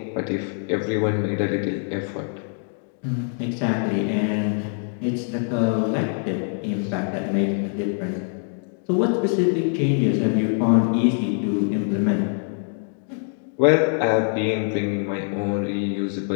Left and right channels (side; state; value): right; silent; 55 dB below the other